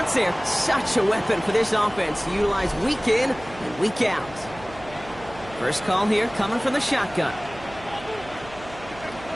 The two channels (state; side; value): noise; right; hum, 18 dB below the sound